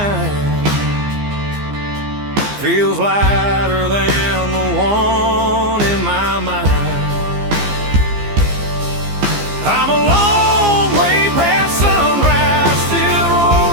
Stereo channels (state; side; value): late; left; 15 ms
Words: feels lighter than the one in my mind. I'm a long way past sunrise, still